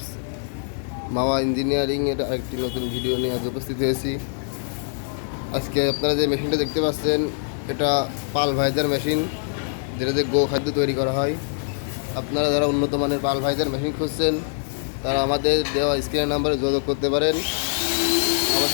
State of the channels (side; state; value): right; silent; 63 dB below the other